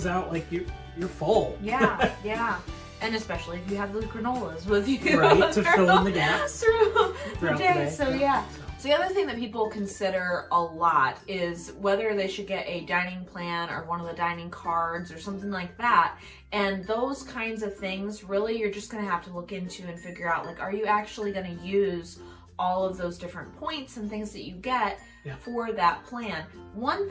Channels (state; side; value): identical; both; correlation 1.00